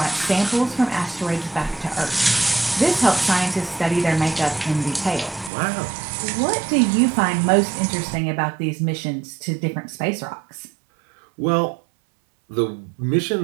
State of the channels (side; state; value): left; drops out; at 5.5 s